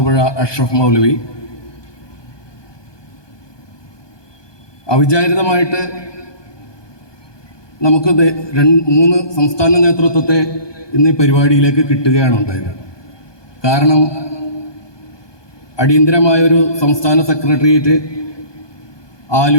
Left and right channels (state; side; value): late; right; 1.2 ms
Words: അഷ്റഫ് മൗലവി, അവിചാരിതമായിട്ട് നമുക്ക് 3 സംസ്ഥാന നേതൃത്വത്തെ ഇന്ന് ഈ പരിപാടിയിലേക്ക് കിട്ടുകയാണ് ഉണ്ടായത്. കാരണം അടിയന്തരമായൊരു സംസ്ഥാന സെക്രട്ടേറിയറ്റ്